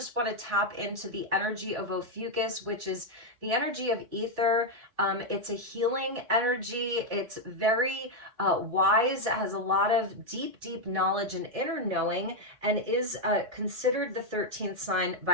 want to tap into the energy of Ophiuchus, which is the energy of ether. It's a healing energy. It's very wise, has a lot of deep knowledge and inner knowing, and is considered the 13th sign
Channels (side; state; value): left; late; 4.1 ms